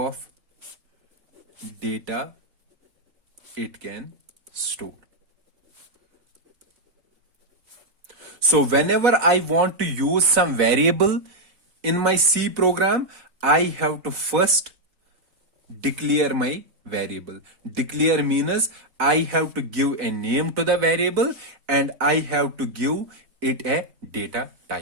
data it can store. So whenever I want to use some variable in my C program, I have to first declare my variable. Declare means I have to give a name to the variable and I have to give it a data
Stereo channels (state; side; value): late; left; 4.0 ms